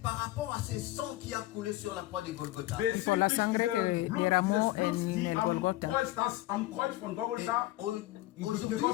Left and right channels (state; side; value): quieter; right; 16.9 dB